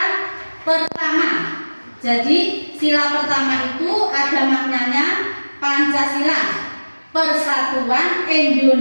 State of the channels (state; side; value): inverted; both; correlation -1.00